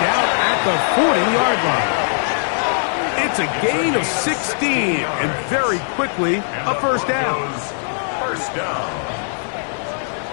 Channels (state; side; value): silent; right; 66 dB below the other